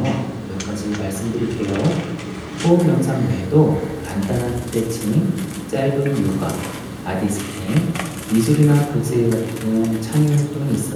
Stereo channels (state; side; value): identical; both; correlation 1.00